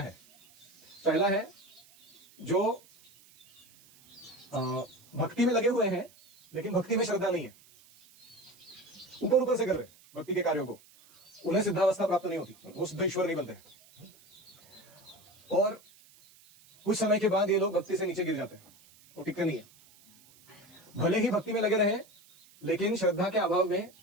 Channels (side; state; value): right; noise; hiss, 26 dB below the sound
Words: हैं। पहला है जो भक्ति में लगे हुए हैं लेकिन भक्ति में श्रद्धा नहीं है, ऊपर ऊपर से कर रहे हैं भक्ति के कार्यों को, उन्हें सिद्धावस्था प्राप्त नहीं होती, वो सिद्ध ईश्वर नहीं बनते। और कुछ समय के बाद ये लोग भक्ति से नीचे गिर जाते हैं, वो टिकते नहीं है। भले ही भक्ति में लगे रहे, लेकिन श्रद्धा के अभाव में